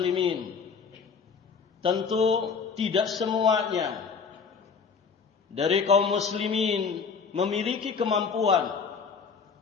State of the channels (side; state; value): right; quieter; 5.6 dB